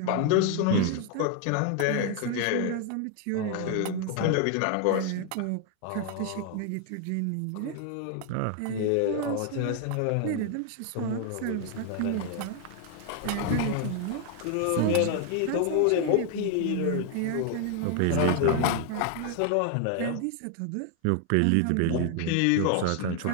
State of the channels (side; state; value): both; different; correlation 0.00